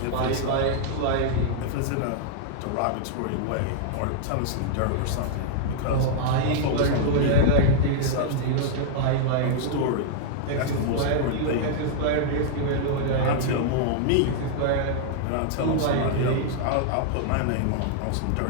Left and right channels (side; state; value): both; different; correlation -0.01